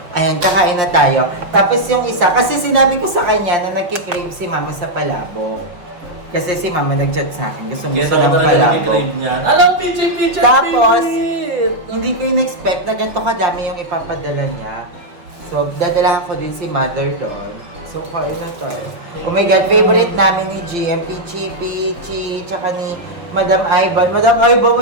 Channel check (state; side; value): late; left; 5.6 ms